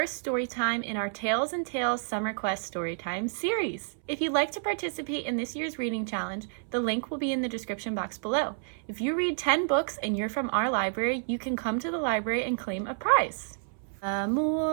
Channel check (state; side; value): silent; left; 58 dB below the other